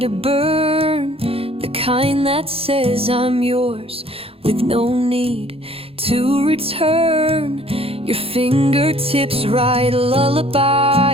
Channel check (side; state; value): left; late; 0.28 ms